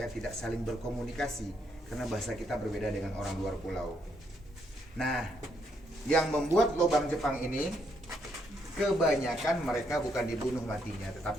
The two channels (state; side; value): normal; both; correlation 0.75